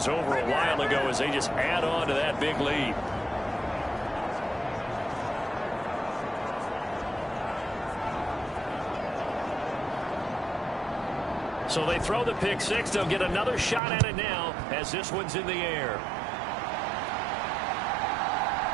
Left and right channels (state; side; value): drops out; left; at 13.8 s